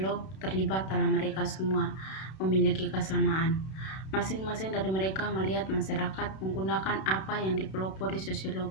terlibat dalam mereka semua memiliki kesamaan. Masing-masing dari mereka melihat masyarakat menggunakan apa yang dipelopori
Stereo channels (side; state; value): right; late; 32 ms